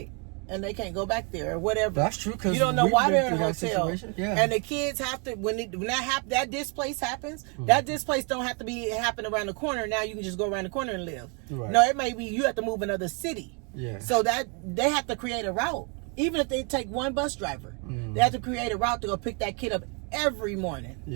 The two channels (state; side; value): quieter; left; 35.4 dB